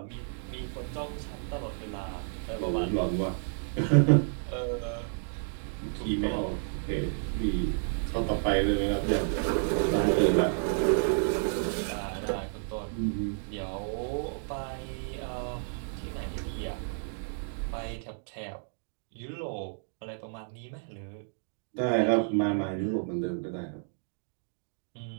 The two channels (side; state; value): left; silent; digital silence